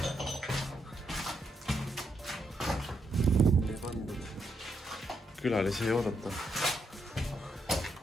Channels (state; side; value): normal; both; correlation 0.79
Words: Külalisi ei oodata.